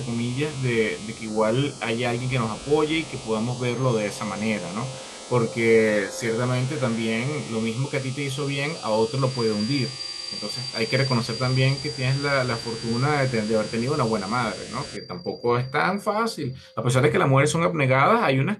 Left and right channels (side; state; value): both; identical; correlation 1.00